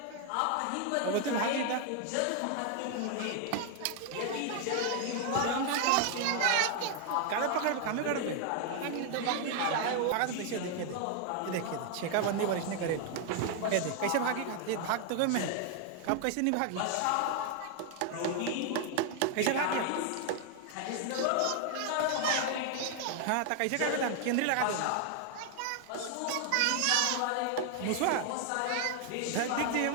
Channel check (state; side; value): different; both; correlation 0.00